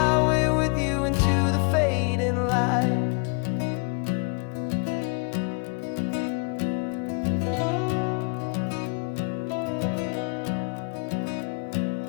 with you into the fading light.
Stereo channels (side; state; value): right; quieter; 35.9 dB